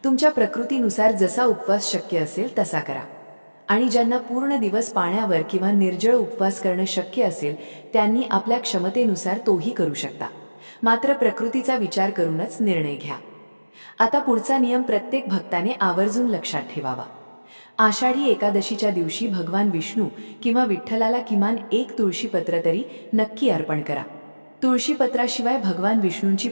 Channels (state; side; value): inverted; both; correlation -1.00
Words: तुमच्या प्रकृतीनुसार जसा उपवास शक्य असेल तसा करा. आणि ज्यांना पूर्ण दिवस पाण्यावर किंवा निर्जळ उपवास करणं शक्य असेल त्यांनी आपल्या क्षमतेनुसार तोही करू शकता. मात्र प्रकृतीचा विचार करूनच निर्णय घ्या. आता पुढचा नियम प्रत्येक भक्ताने आवर्जून लक्षात ठेवावा. आषाढी एकादशीच्या दिवशी भगवान विष्णू किंवा विठ्ठलाला किमान एक तुळशीपत्र तरी नक्की अर्पण करा. तुळशीपत्राशिवाय भगवान विष्णूंची